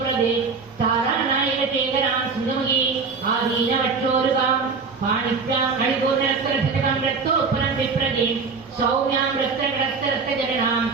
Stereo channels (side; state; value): left; quieter; 4.9 dB